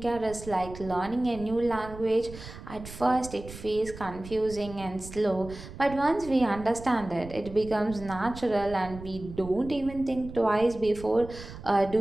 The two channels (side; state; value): right; noise; rumble, 14 dB below the sound